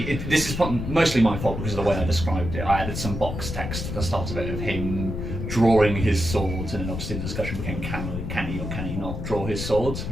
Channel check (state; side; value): noise; left; rumble, 5 dB below the sound